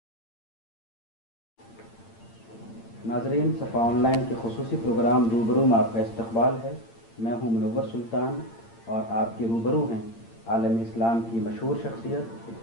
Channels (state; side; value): late; right; 8.8 ms